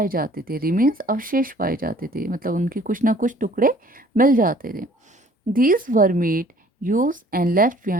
जाते थे रिमेन्स अवशेष पाए जाते थे मतलब उनके कुछ ना कुछ टुकड़े मिल जाते थे these were made use and left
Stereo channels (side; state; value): both; normal; correlation 0.55